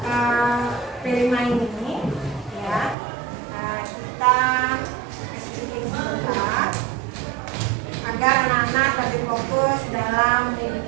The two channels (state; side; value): drops out; left; at 3.0 s